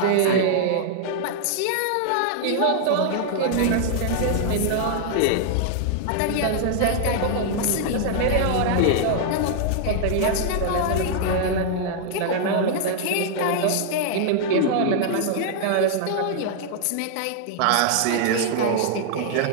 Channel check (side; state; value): both; different; correlation -0.01